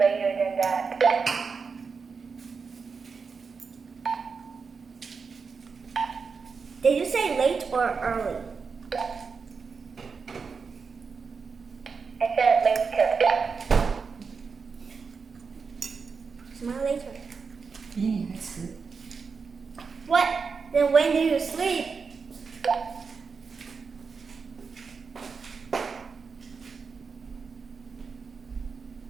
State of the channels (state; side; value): quieter; left; 5.2 dB